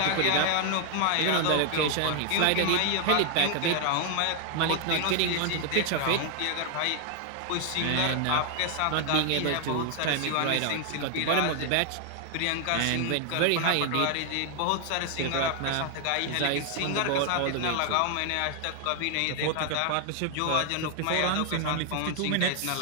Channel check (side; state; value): both; different; correlation 0.00